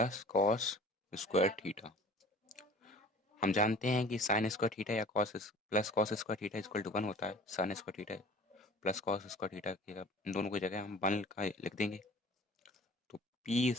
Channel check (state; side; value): normal; both; correlation 0.45